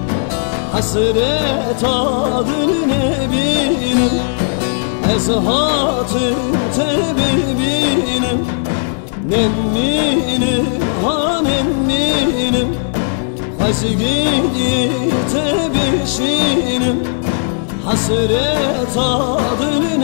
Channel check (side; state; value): right; silent; digital silence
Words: hasret adır Nebinim. Ezhatı tebibinim, Nemminim, Hanemminim. Azgiyi tebşinim, hasret adır